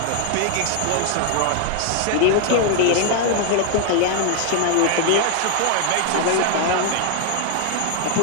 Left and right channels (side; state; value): both; different; correlation 0.00